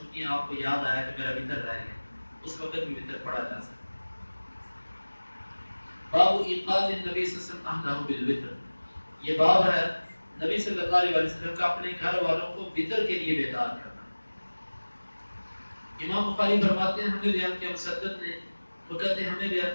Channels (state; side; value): inverted; both; correlation -1.00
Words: ہیں، آپ کو یاد آیا کہ میرا وتر رہ گیا، اس وقت بھی وتر پڑھا جا سکتا. باب ایقاظ النبی صلی اللہ علیہ وسلم بالوتر، یہ باب ہے نبی صلی اللہ علیہ وسلم کا اپنے گھر والوں کو وتر کے لیے بیدار کرنا. امام بخاری فرماتے ہیں ہمیں بیان کیا مسدد نے، وہ کہتے ہیں ہمیں